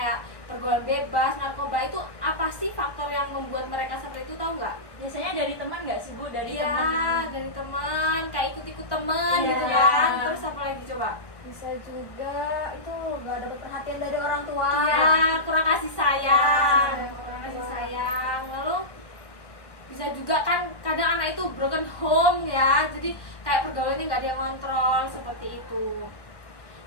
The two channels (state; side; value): late; right; 1.1 ms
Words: pergaulan bebas, narkoba itu apa sih faktor yang membuat mereka seperti itu, tahu nggak? Biasanya dari teman nggak sih, Bu? Dari Iya, teman. dari teman, kayak ikut-ikut teman Iya. gitu kan. Terus apa lagi coba? Bisa juga itu nggak dapat perhatian dari orang tua. Iya, kurang kasih sayang, Iya, kurang kasih sayang. Lalu bisa juga kan kadang anak itu broken home ya, jadi kayak pergaulannya nggak ada yang kontrol seperti itu.